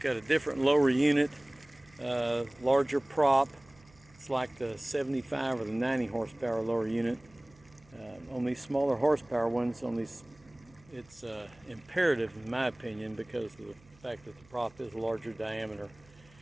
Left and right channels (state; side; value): noise; right; hum, 27 dB below the sound